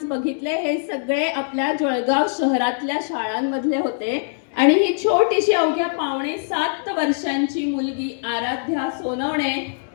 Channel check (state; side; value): silent; right; 64 dB below the other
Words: बघितले हे सगळे आपल्या जळगाव शहरातल्या शाळांमधले होते. आणि ही छोटीशी अवघ्या 6.5 वर्षांची मुलगी आराध्या सोनवणे